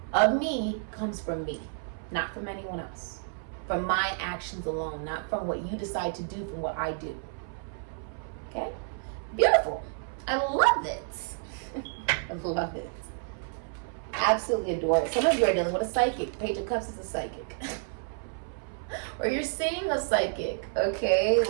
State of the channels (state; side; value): silent; left; 58 dB below the other